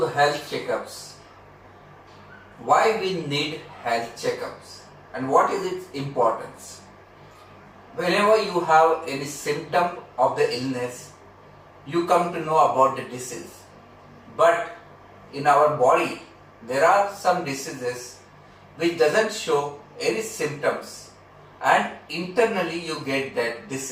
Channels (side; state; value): both; identical; correlation 1.00